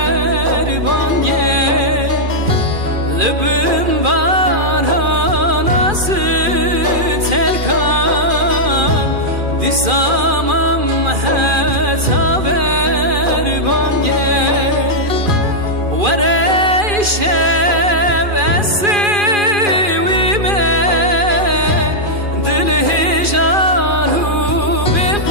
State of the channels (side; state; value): left; late; 2.4 ms